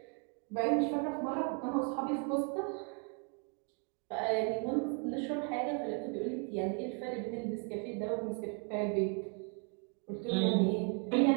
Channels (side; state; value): left; quieter; 39.4 dB